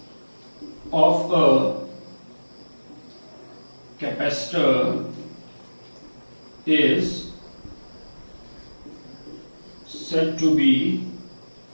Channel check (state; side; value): inverted; both; correlation -1.00